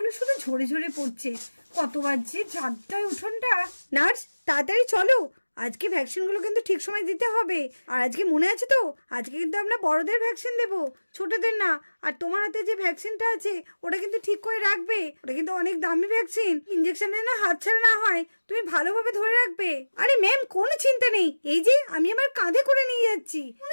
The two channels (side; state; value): both; inverted; correlation -1.00